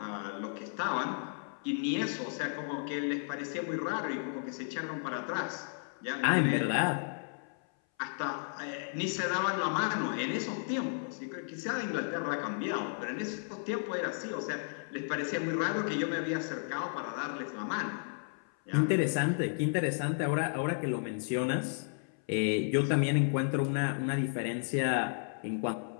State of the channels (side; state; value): right; silent; 55 dB below the other